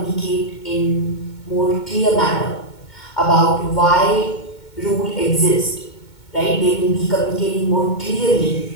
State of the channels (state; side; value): late; right; 2.2 ms